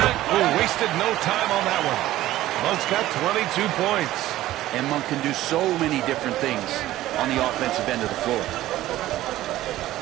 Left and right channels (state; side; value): quieter; left; 15.0 dB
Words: wasted no time on that one. Monk's got 22 points. And Monk can do so many different things on the offensive end of the floor.